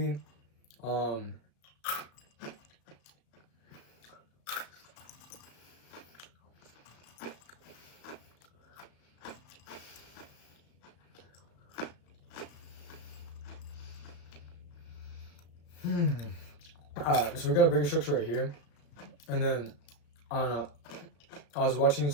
so we got a bigger structure right here, and then I don't know, I was watching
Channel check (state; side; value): late; right; 34 ms